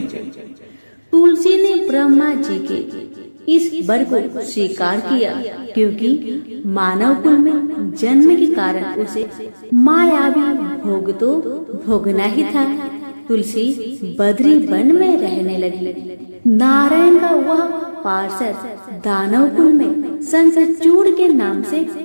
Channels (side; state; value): both; inverted; correlation -1.00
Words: तुलसी ने ब्रह्मा जी के इस वर को स्वीकार किया, क्योंकि मानव कुल में जन्म के कारण उसे मायावी भोग तो भोगना ही था। तुलसी बद्री वन में रहने लगी। नारायण का वह पार्षद दानव कुल में शंखचूड़ के नाम से